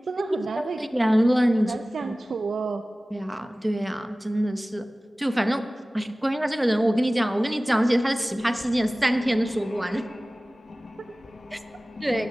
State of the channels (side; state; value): both; normal; correlation 0.98